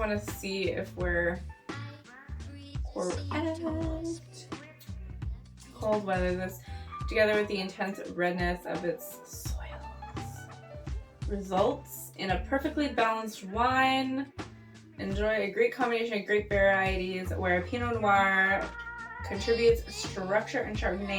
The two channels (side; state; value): both; identical; correlation 1.00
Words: to see if we're correct. Cold weather, this together with the intense redness of its soils results in a perfectly balanced wine. Enjoy a great combination of grape varieties where Pinot Noir contributes structure and